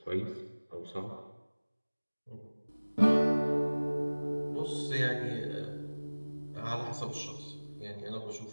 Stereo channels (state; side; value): inverted; both; correlation -1.00